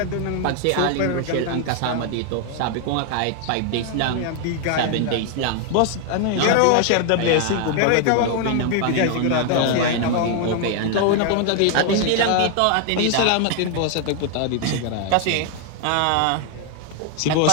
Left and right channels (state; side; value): different; both; correlation 0.00